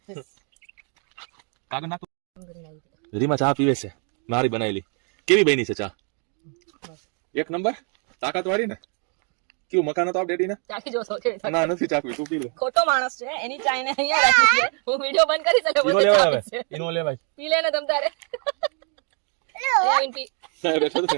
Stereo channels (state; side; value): quieter; left; 39.4 dB